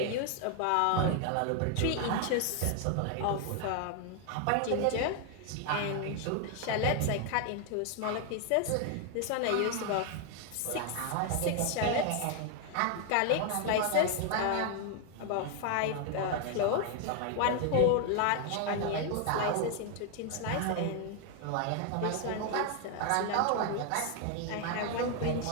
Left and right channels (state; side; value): different; both; correlation 0.00